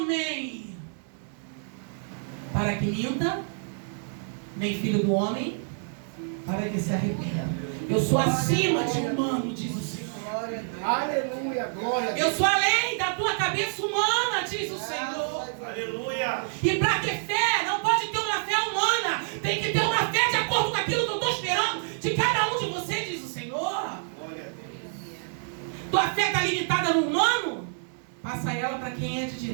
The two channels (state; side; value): silent; left; digital silence